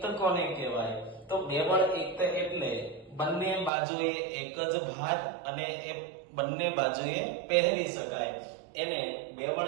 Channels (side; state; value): left; drops out; at 3.7 s